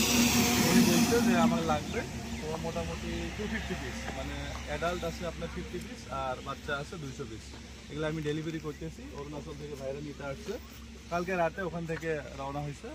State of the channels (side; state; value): both; identical; correlation 1.00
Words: উনি বলছে যে আমার লাগবে। তো মোটামুটি 250 পিস, মানে অ্যাডাল্ট আছে আপনার 50 পিস আর বাচ্চা আছে 200 পিস। এগুলো আমি ডেলিভারি করতেছি। অরুণাচল থেকে ভাইরা নিতে আসছে, কালকে রাতে ওখান থেকে রওনা হয়েছে